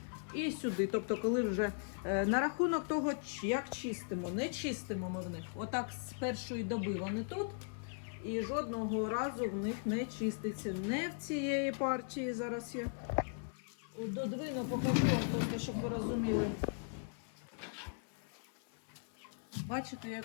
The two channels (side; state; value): right; silent; 52 dB below the other